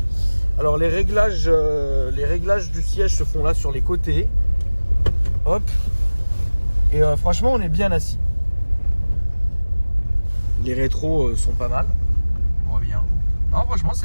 Alors les réglages du siège se font là sur les côtés. Hop. Et franchement, on est bien assis. Les rétros sont pas mal. On voit bien. Non, franchement,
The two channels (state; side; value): inverted; both; correlation -1.00